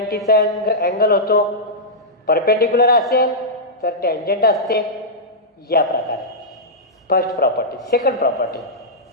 अँगल होतो. परपेंडिक्युलर असेल तर टँजंट असते. या प्रकारे फर्स्ट प्रॉपर्टी. सेकंड प्रॉपर्टी,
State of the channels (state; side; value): normal; both; correlation -0.11